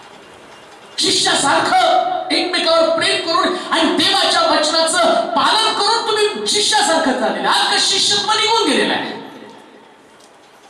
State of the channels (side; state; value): both; identical; correlation 1.00